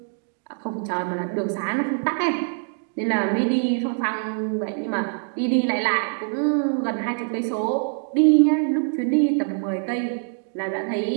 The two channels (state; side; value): silent; left; 63 dB below the other